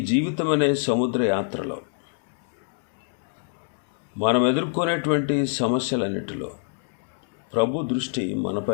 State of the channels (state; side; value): silent; right; 61 dB below the other